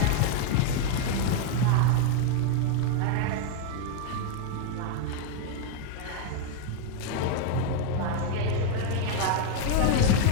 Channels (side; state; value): both; different; correlation 0.00